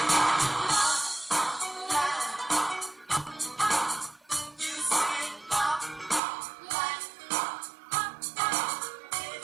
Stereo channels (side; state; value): left; drops out; at 6.2 s